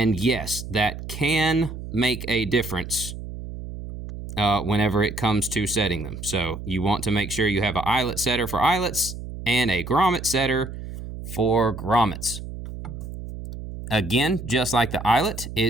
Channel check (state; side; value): noise; right; hum, 10 dB below the sound